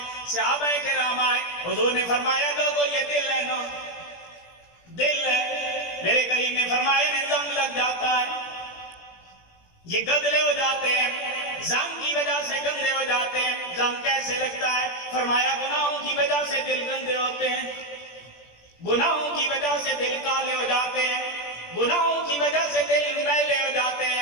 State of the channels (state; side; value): late; right; 17 ms